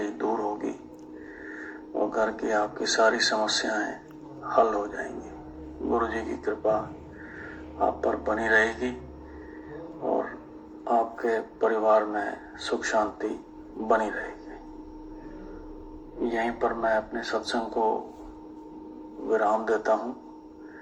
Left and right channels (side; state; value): both; identical; correlation 1.00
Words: दूर होगी और घर की आपकी सारी समस्याएं हल हो जाएंगी। गुरु जी की कृपा आप पर बनी रहेगी और आपके परिवार में सुख शांति बनी रहेगी। यहीं पर मैं अपने सत्संग को विराम देता हूँ।